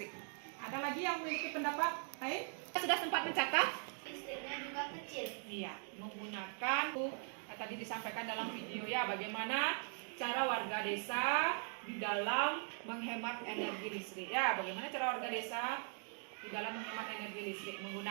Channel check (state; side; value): silent; left; 51 dB below the other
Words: Ada lagi yang memiliki pendapat lain? Sudah sempat mencatat? Listriknya juga kecil. Iya, menggunakan tadi disampaikan dalam video ya, bagaimana cara warga desa di dalam menghemat energi listrik. Ya, bagaimana cara warga desa di dalam menghemat energi listrik